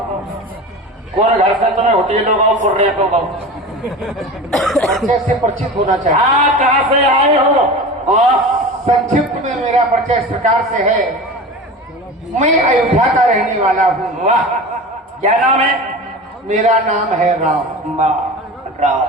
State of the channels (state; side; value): normal; both; correlation 0.32